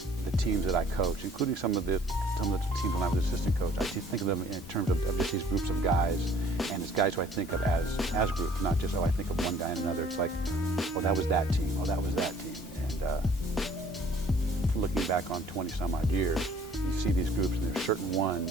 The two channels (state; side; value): normal; both; correlation 0.56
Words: the teams that I coach, including some of the teams when I was assistant coach. I think of them in terms of just these groups of guys, and it's guys who I think of as groups, not just, I think of one guy and another. It's like, oh, that was that team. Oh, that was that team. And looking back on 20 some odd years, you see these groups, and there's certain